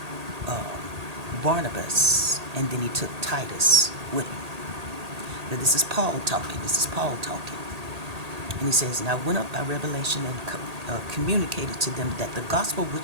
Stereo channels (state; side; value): late; left; 1.8 ms